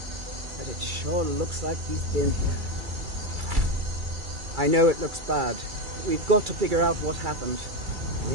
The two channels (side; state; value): left; late; 2.3 ms